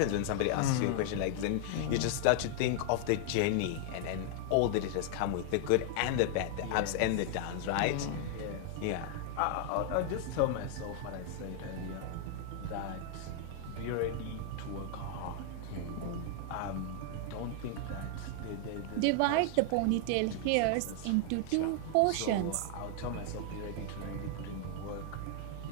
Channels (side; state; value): both; different; correlation 0.00